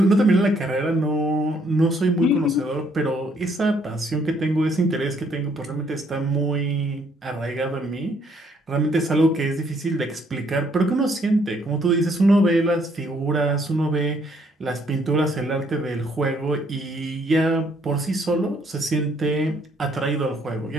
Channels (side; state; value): both; normal; correlation 0.68